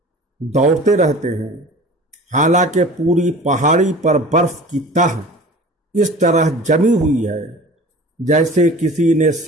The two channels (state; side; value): normal; both; correlation 0.41